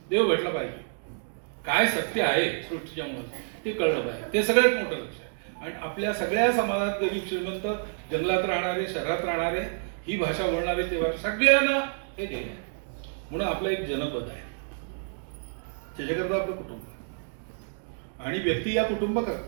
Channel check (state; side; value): silent; left; digital silence